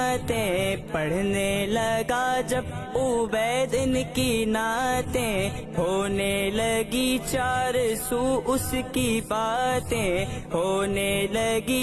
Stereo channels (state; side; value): identical; both; correlation 1.00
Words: پڑھنے لگا جب عبید ان کی نعتیں، ہونے لگی چار سو اس کی باتیں، ہونے